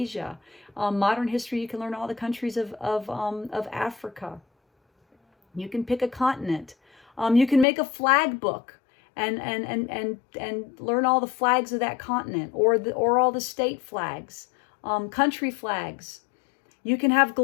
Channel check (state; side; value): drops out; right; at 7.7 s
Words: Modern history, you can learn all the countries of Africa. You can pick a continent. You can make a flag book and learn all the flags of that continent, or all the state flags, country flags. You can have